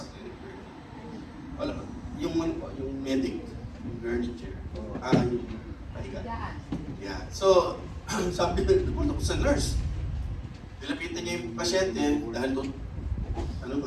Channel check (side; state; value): both; identical; correlation 1.00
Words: clinic. Wala, yung medic, yung gurney chair, yung pahiga. Yeah. So, sabi na, napunta ko sa nurse. Nilapitan niya yung pasyente dahil doon,